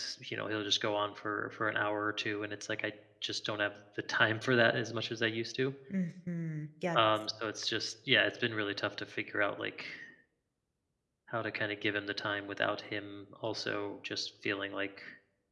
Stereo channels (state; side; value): identical; both; correlation 1.00